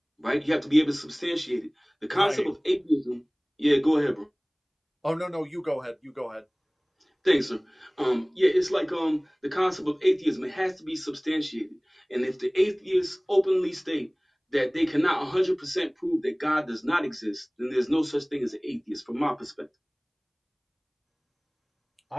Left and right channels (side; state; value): both; identical; correlation 1.00